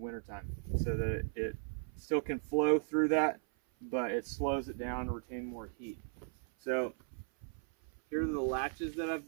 so that it still can flow through that, but it slows it down to retain more heat. So here are the latches that I've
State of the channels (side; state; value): left; silent; 53 dB below the other